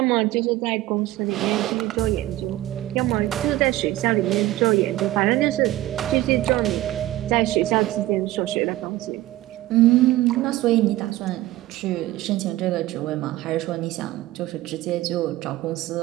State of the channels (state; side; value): quieter; left; 16.2 dB